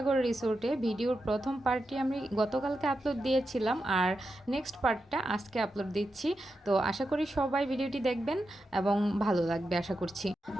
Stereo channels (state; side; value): normal; both; correlation 0.88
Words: রিসোর্টে। ভিডিওর প্রথম পার্টটি আমি গতকালকে আপলোড দিয়েছিলাম আর নেক্সট পার্টটা আজকে আপলোড দিচ্ছি। তো আশা করি সবাই ভিডিওটি দেখবেন এবং ভালো লাগবে আশা করছি।